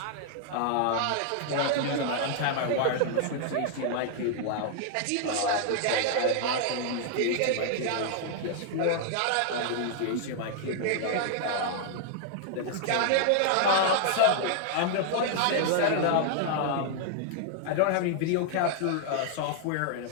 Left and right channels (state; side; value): different; both; correlation 0.00